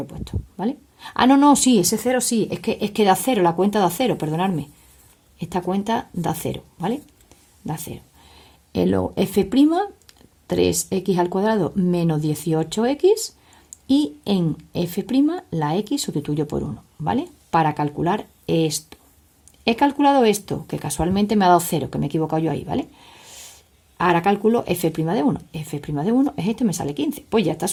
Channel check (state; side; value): identical; both; correlation 1.00